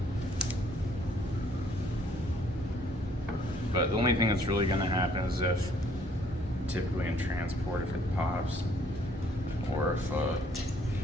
But the only thing that's really going to happen is if, typically in transport, if it pops, or if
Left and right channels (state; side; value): normal; both; correlation 0.62